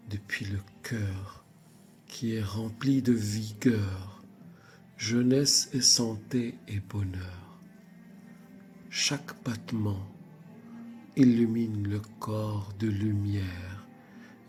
depuis le cœur qui est rempli de vigueur, jeunesse et santé et bonheur. Chaque battement illumine le corps de lumière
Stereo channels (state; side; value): identical; both; correlation 1.00